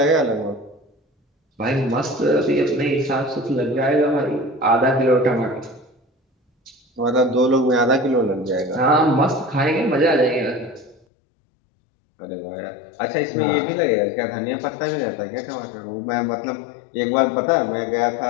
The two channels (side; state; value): right; drops out; at 11.0 s